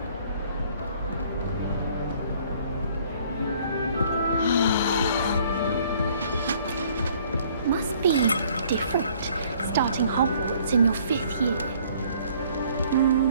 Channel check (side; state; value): both; inverted; correlation -0.59